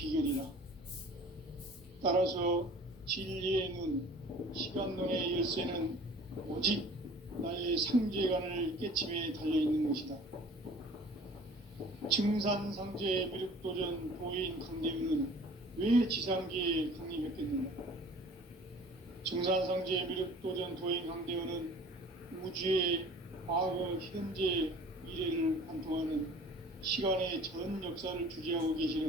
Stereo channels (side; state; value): both; normal; correlation 0.47